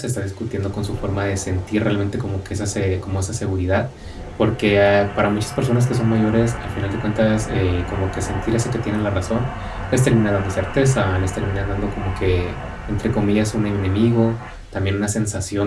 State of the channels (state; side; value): identical; both; correlation 1.00